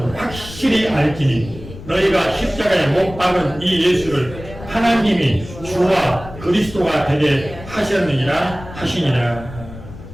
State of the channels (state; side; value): noise; left; rumble, 15 dB below the sound